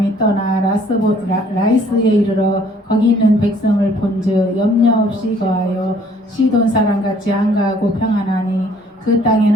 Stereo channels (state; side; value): normal; both; correlation 0.59